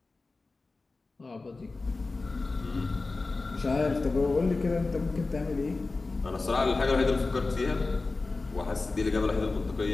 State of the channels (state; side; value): quieter; right; 3.6 dB